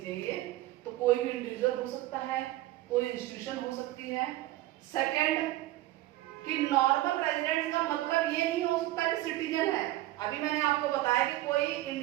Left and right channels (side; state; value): left; quieter; 16.4 dB